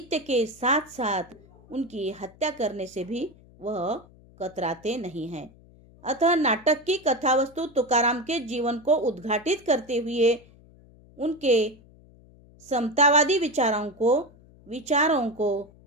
के साथ साथ उनकी हत्या करने से भी वह कतराते नहीं हैं। अतः नाटक की कथावस्तु तुकाराम के जीवन को उद्घाटित करते हुए उनके समतावादी विचारों को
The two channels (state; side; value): noise; left; hum, 25 dB below the sound